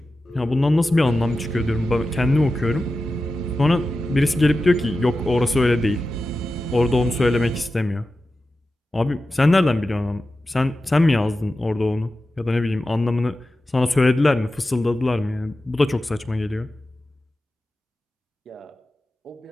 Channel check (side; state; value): both; normal; correlation 0.93